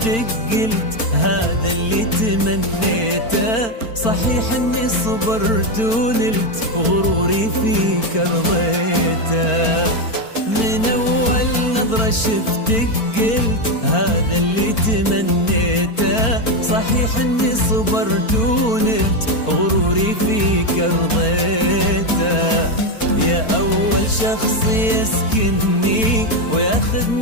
قلت هذا اللي تمنيته. صحيح اني صبرت ونلت غروري فيك رضيته. من اول نظرة شفتك قلت هذا اللي تمنيته. صحيح اني صبرت ونلت غروري فيك رضيته. يا أول شخص يسكنني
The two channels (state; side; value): late; right; 4.4 ms